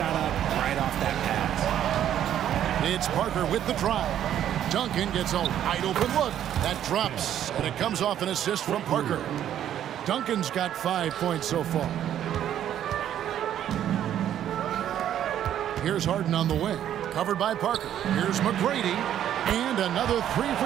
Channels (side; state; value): left; quieter; 10.7 dB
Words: up right off that pass. It's Parker with the drive. Duncan gets a wide open look. That drops, and it comes off an assist from Parker. Duncan's got 5 points so far. Here's Harden on the wing, covered by Parker. Here's McGrady, and another 3